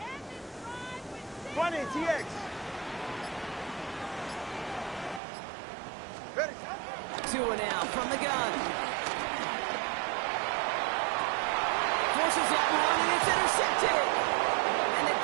20, TX. Ready. 2 and out from the gun. Forces that one, and it's intercepted. And the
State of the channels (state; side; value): drops out; left; at 5.2 s